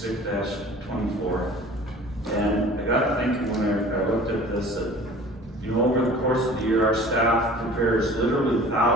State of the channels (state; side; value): normal; both; correlation 0.45